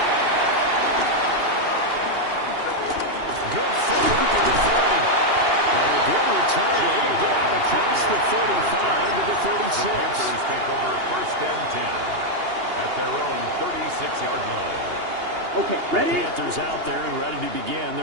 Good footwork at the 30. And a good return. Able to get out across the 35 to the 36. The Panthers take over 1st and 10 at their own 36-yard line. Okay, ready? The Panthers out there and ready to begin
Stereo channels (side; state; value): left; late; 2.8 ms